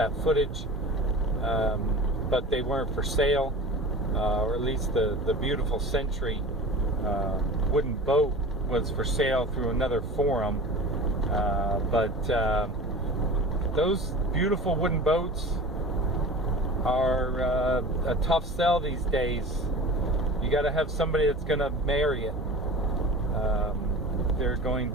footage, but they weren't for sale, or at least the beautiful Century wooden boat was for sale through another forum. But those beautiful wooden boats are a tough sell these days. You got to have somebody that's going to marry it. They're going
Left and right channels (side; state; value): both; normal; correlation 0.35